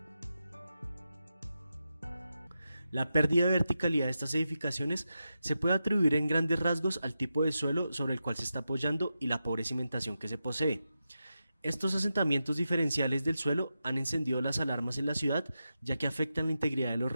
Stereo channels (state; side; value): inverted; both; correlation -0.89